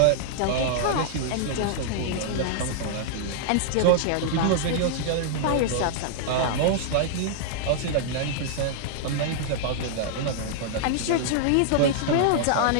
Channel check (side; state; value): both; different; correlation -0.01